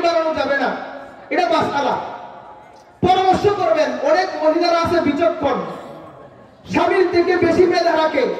বানানো যাবে না, এটা মাসআলা। পরামর্শ করবেন। অনেক মহিলারা আছে বিচক্ষণ, স্বামীর থেকে বেশি মেধা রাখে,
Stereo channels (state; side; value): identical; both; correlation 1.00